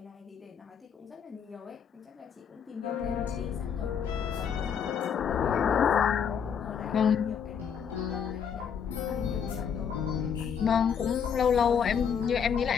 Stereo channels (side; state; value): right; quieter; 7.4 dB